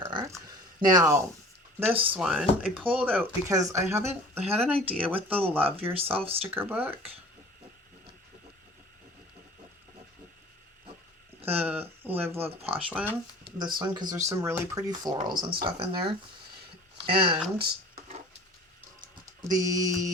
Now, this one I pulled out because I had an idea with the Love Yourself sticker book. The Live Love Posh one. This one, because there's some really pretty florals and stuff in there. And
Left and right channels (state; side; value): normal; both; correlation 0.45